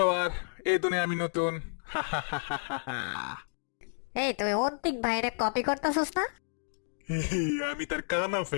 এই দুনিয়া আমি নতুন। এই তুই অন্তিক ভাইরে কপি করতেছস না? আমি তার কানা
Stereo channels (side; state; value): right; silent; digital silence